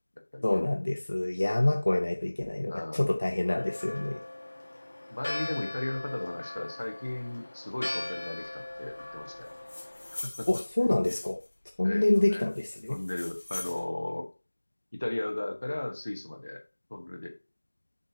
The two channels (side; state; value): both; inverted; correlation -1.00